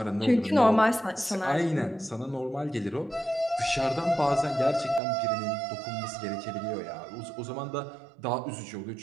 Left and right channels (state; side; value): drops out; left; at 5.0 s